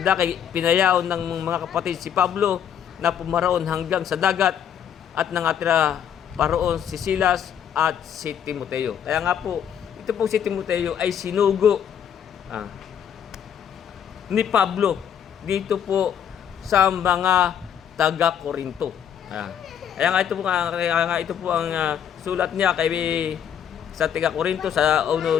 pinayaon ng mga kapatid si Pablo na pumaraon hanggang sa dagat at nangatira paroon si Silas at si Timoteo. Kaya nga po, ito po si Timoteo ay sinugo ni Pablo dito po sa mga taga-Korinto. Kaya nga ito po ang sulat niya kay sa taga-Korinto sa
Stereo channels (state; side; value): quieter; right; 8.8 dB